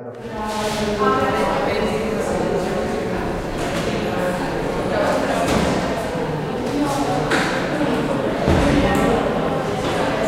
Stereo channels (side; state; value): both; identical; correlation 1.00